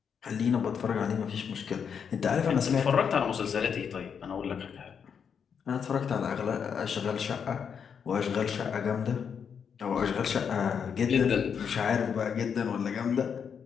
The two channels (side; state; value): right; quieter; 7.1 dB